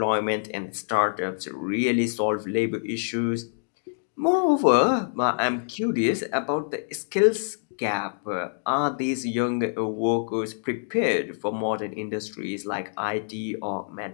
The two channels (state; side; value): silent; right; digital silence